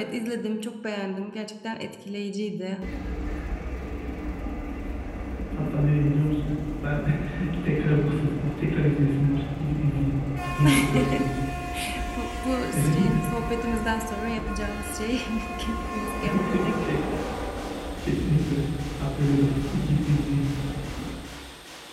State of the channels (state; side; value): identical; both; correlation 1.00